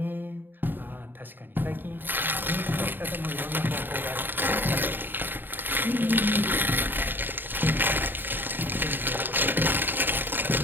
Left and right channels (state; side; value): late; left; 0.093 ms